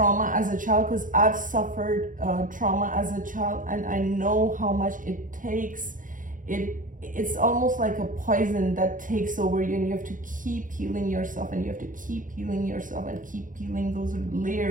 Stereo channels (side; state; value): left; late; 0.38 ms